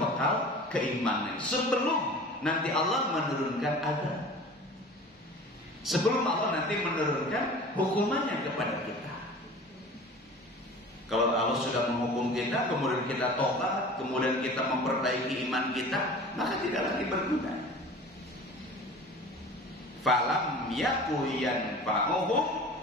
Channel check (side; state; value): both; normal; correlation 0.40